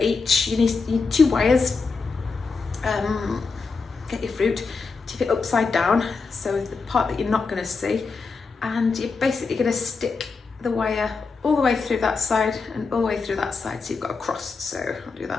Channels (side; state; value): right; quieter; 4.6 dB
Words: You need 2 wires. Get your fruit, tip it upside down, so the part that you're not going to see, and you're basically going to stick the wire all the way through that side and all the way through that side, so you've got a cross. So I'll do